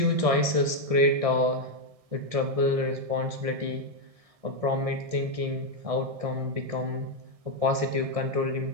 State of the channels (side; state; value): left; late; 1.6 ms